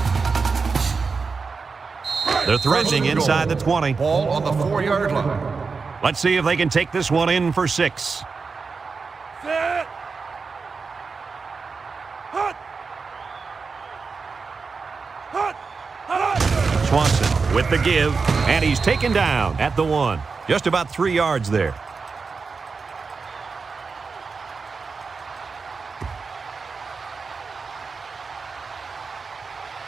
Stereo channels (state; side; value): quieter; left; 4.8 dB